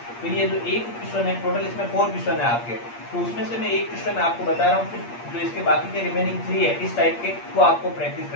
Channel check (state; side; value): late; right; 8.5 ms